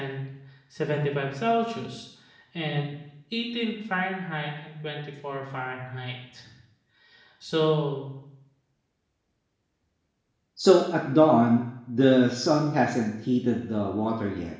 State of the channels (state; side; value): identical; both; correlation 1.00